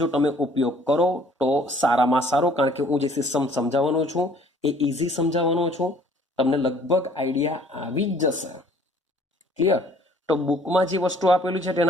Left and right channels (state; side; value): normal; both; correlation 0.57